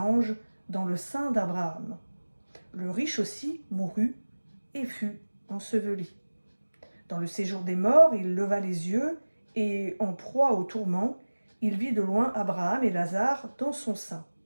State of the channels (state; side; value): inverted; both; correlation -1.00